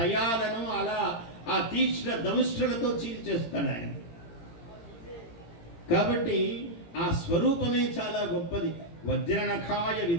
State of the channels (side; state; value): right; late; 18 ms